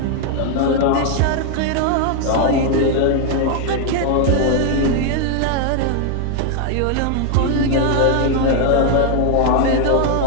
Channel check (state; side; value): different; both; correlation 0.00